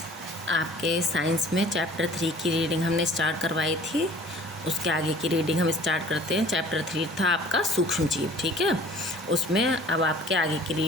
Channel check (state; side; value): normal; both; correlation 0.50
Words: आपके साइंस में चैप्टर 3 की रीडिंग हमने स्टार्ट करवाई थी। उसके आगे की रीडिंग हम स्टार्ट करते हैं। चैप्टर 3 था आपका सूक्ष्म जीव, ठीक है। उसमें अब आपके आगे की